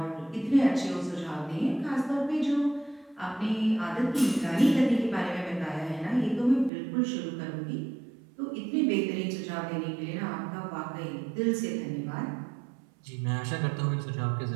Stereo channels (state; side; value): drops out; left; at 6.7 s